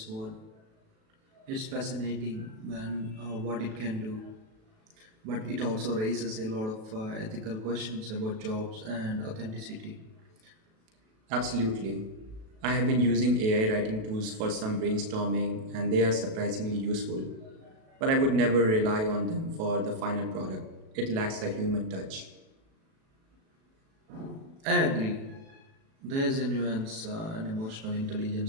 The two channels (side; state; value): left; late; 37 ms